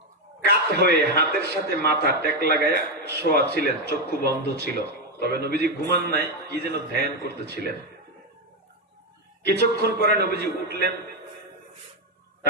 কাত হয়ে হাতের সাথে মাথা টেক লাগায়া শোয়া ছিলেন, চক্ষু বন্ধ ছিল। তবে নবীজি ঘুমান নাই, কি যেন ধ্যান করতেছিলেন। কিছুক্ষণ পরে নবীজি উঠলেন,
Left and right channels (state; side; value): normal; both; correlation 0.07